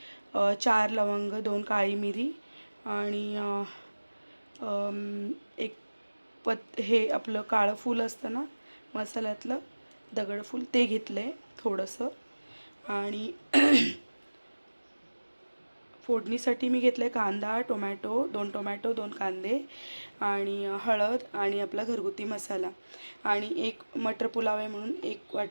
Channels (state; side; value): inverted; both; correlation -1.00